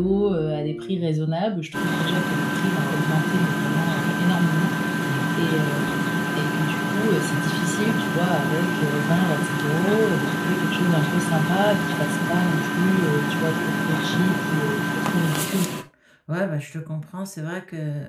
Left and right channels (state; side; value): identical; both; correlation 1.00